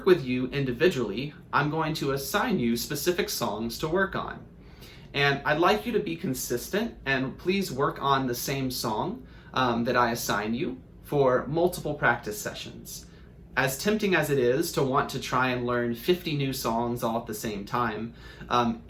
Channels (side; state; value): both; identical; correlation 1.00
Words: with you individually, I'm going to assign you specific songs to work on. And I'd like you to be consistent and please work on the same song that I assign you for multiple practice sessions. as tempting as it is to want to try and learn 50 new songs all at the same time,